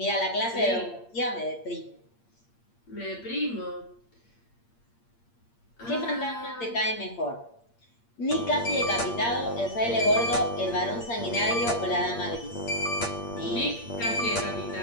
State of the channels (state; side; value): late; right; 8.6 ms